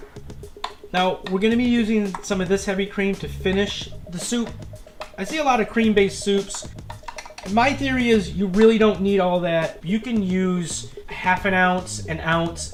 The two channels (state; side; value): identical; both; correlation 1.00